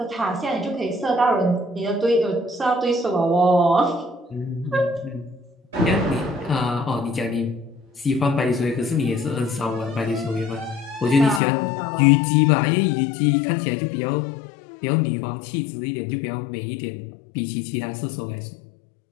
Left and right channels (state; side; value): drops out; right; at 11.4 s